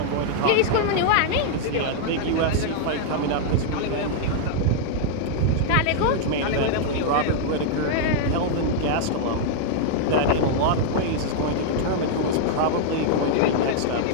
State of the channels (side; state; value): both; different; correlation -0.01